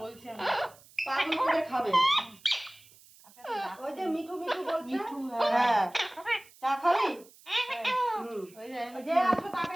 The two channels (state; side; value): noise; right; hiss, 25 dB below the sound